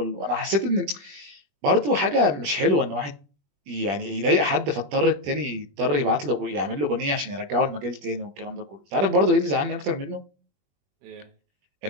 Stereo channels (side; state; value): left; late; 21 ms